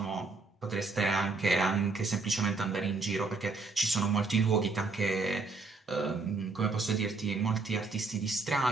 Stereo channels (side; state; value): left; quieter; 3.8 dB